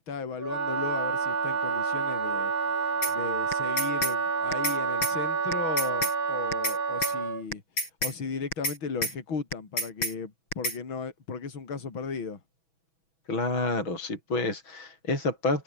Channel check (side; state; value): right; late; 6.2 ms